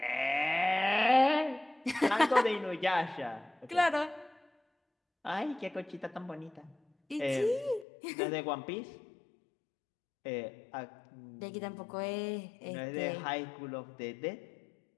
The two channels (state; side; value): drops out; right; at 7.9 s